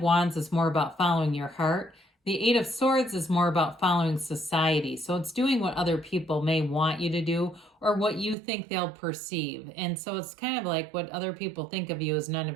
Wands is more about following your heart. The Eight of Swords is more about following society. So it's doing what other people may want you to do or what you think they'll perceive. And so it's kind of like what other people think of you is none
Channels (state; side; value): drops out; left; at 8.3 s